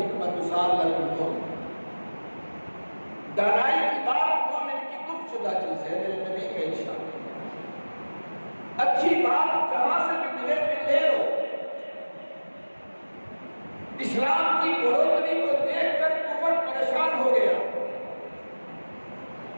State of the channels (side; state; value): both; inverted; correlation -1.00